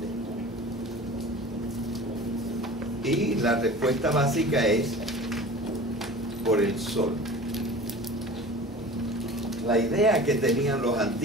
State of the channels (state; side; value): normal; both; correlation 0.39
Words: Y la respuesta básica es por el sol. La idea que tenían los